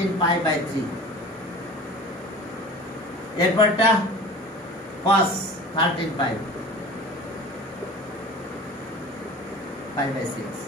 pi by 3 এরপরটা cos 13 pi by 6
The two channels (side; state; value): both; normal; correlation 0.40